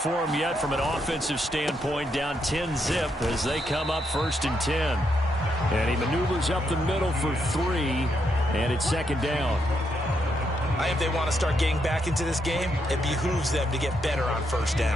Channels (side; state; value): both; normal; correlation 0.79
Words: them yet from an offensive standpoint, down 10-zip as they come up 1st and 10. And he maneuvers up the middle for 3, and it's 2nd down. If they want to start getting back into this game, it behooves them to get better on 1st